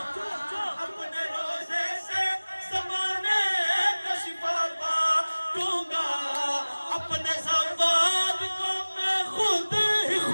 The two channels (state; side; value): inverted; both; correlation -1.00